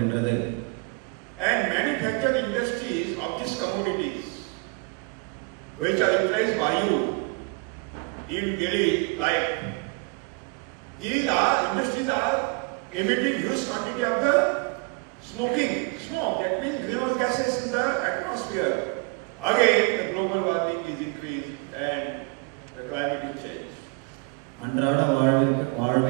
And manufacturing industries of these commodities which are utilized by you in daily life, these industries are emitting huge quantity of the smoke, that means greenhouse gases in the atmosphere. Again, the global warming is increased and the climate is changed. அன்றாட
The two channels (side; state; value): left; quieter; 30.4 dB